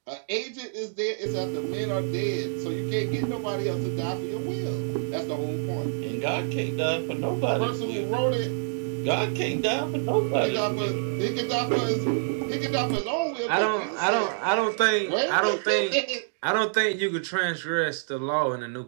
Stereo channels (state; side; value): silent; left; digital silence